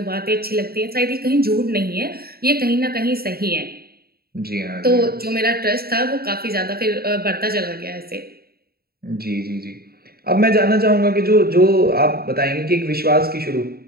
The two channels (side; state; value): left; late; 0.45 ms